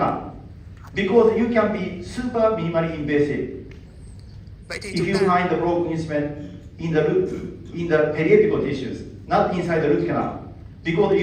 because you can be super minimally invasive. Vậy thì If chúng you ta find the broken instrument in the periapical tissues, not inside the root canal, because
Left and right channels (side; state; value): both; identical; correlation 1.00